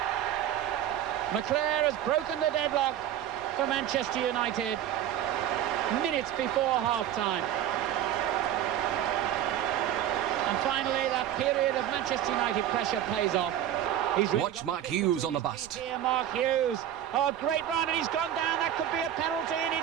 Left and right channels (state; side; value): quieter; left; 11.1 dB